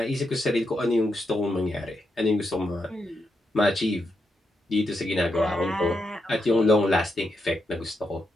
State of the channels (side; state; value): both; normal; correlation 0.83